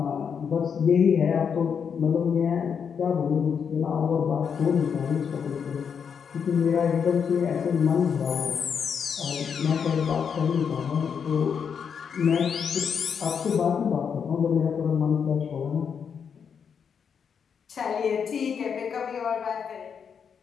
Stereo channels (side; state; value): right; quieter; 6.9 dB